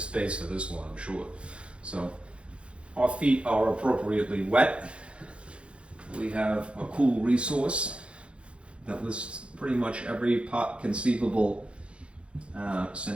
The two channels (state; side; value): late; left; 0.059 ms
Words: for this one, I'm sure. So our feet are appropriately wet. We have a cool resource that lists pretty much every conceivable